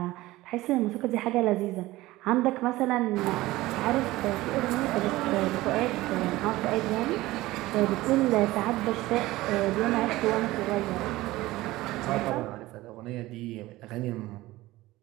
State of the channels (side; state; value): left; quieter; 18.1 dB